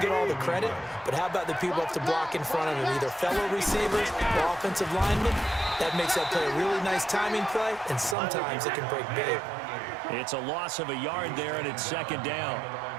get all the credit. But how about the people up to block in front of him, either fellow receivers or offensive linemen? That makes that play a really nice timing play, and sometimes it can break big. It's a loss of a yard there, and it's 2nd down.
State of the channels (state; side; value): drops out; left; at 8.2 s